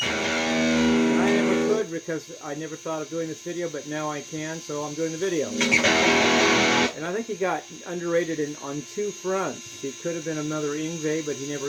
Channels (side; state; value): both; identical; correlation 1.00